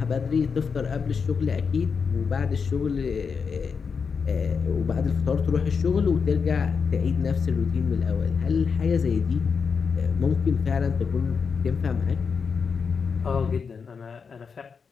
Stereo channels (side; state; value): right; quieter; 5.7 dB